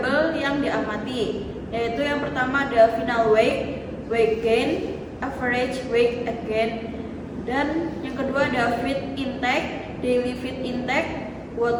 yang diamati, yaitu yang pertama ada final weight, weight gain, average weight gain, dan yang kedua ada feed intake, daily feed intake,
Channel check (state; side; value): identical; both; correlation 1.00